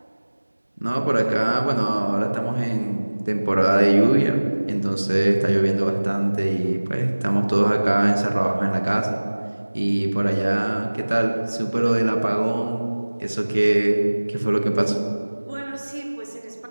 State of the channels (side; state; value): both; inverted; correlation -1.00